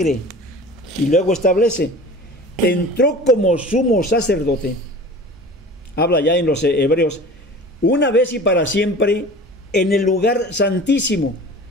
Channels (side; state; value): both; normal; correlation 0.39